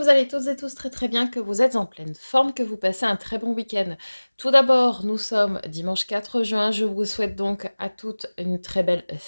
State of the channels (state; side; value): inverted; both; correlation -1.00